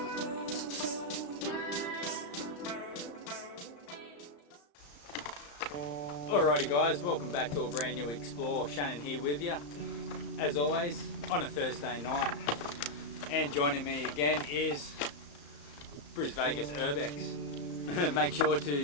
Alrighty guys, welcome back to a brand new Explore. Shannon here with you, as always, on a Thursday night. And joining me again is Vegas Urbex. Make sure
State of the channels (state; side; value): late; right; 34 ms